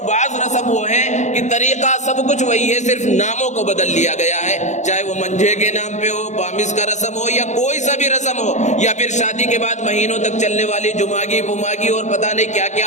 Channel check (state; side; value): late; right; 0.34 ms